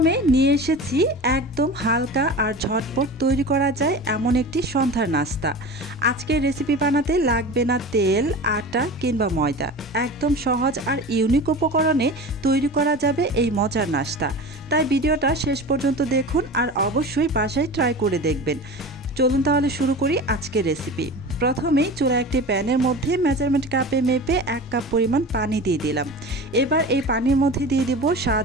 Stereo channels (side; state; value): both; normal; correlation 0.33